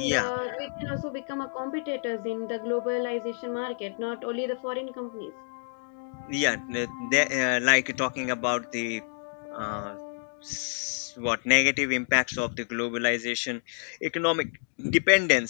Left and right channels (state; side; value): silent; right; digital silence